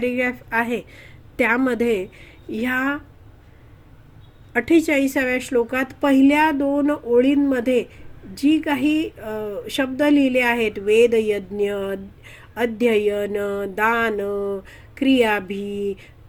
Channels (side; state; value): both; identical; correlation 1.00